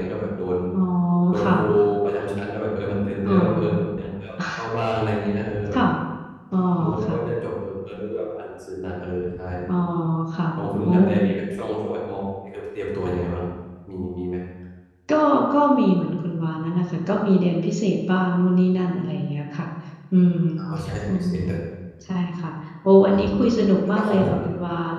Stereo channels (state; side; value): identical; both; correlation 1.00